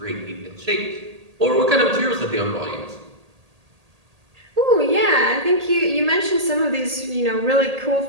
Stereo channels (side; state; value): left; late; 1.8 ms